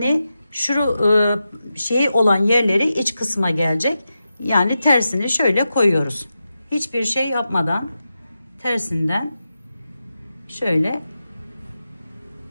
şu şey olan yerleri iç kısma gelecek. Yani tersini şöyle koyuyoruz. Hiçbir şey yapmadan tersinden şöyle.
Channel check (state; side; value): inverted; both; correlation -0.90